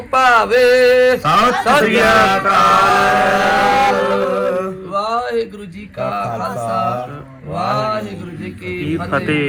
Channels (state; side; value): identical; both; correlation 1.00